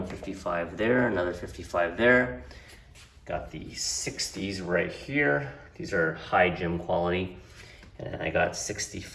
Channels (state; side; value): identical; both; correlation 1.00